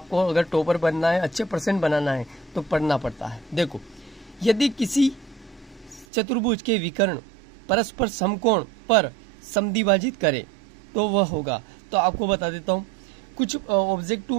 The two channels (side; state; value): left; drops out; at 6.1 s